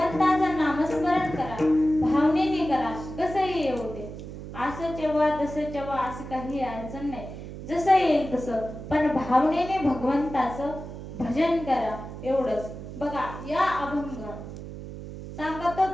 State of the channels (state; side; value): noise; right; hum, 11 dB below the sound